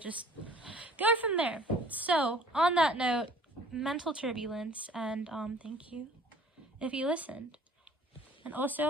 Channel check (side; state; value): both; normal; correlation 0.51